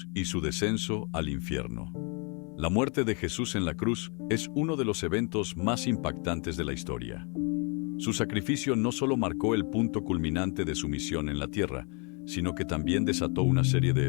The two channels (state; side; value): quieter; right; 34.8 dB